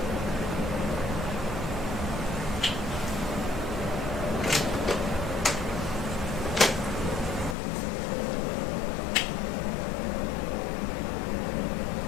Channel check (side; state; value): right; drops out; at 7.6 s